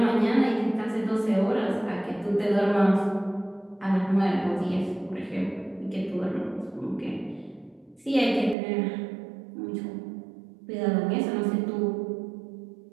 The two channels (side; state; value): left; drops out; at 8.6 s